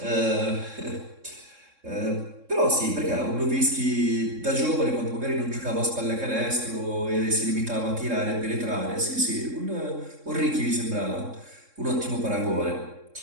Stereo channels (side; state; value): left; late; 3.6 ms